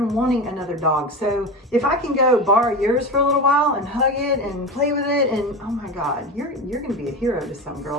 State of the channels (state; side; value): normal; both; correlation 0.25